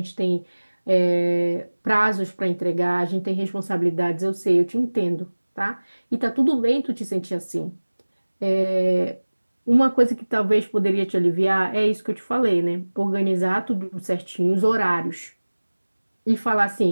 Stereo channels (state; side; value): inverted; both; correlation -1.00